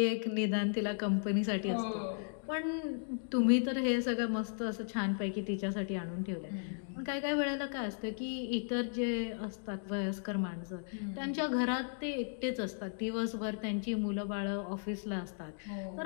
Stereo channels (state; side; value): silent; right; digital silence